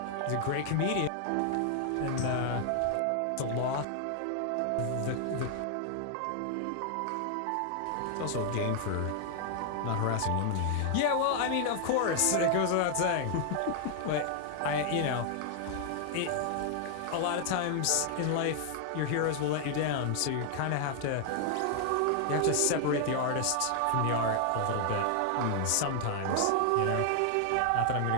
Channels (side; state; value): both; different; correlation 0.00